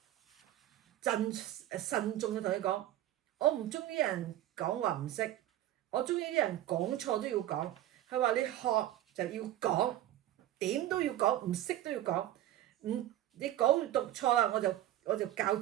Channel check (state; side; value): quieter; left; 13.4 dB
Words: 慎重嘅同你講，我唔中意人講話唔識，我中意啲人講錯都要講。佢話你學就要講，點都要講，唔識都要講。你講讀錯啊，我就教